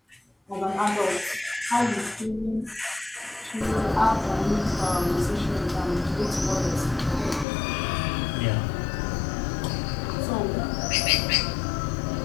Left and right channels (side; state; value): right; drops out; at 7.5 s